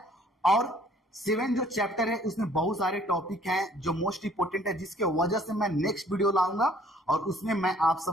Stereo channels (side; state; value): both; normal; correlation 0.58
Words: और 7 जो चैप्टर है उसमें बहुत सारे टॉपिक हैं जो मोस्ट इंपोर्टेंट है, जिसके वजह से मैं नेक्स्ट वीडियो लाऊंगा और उसमें मैं आप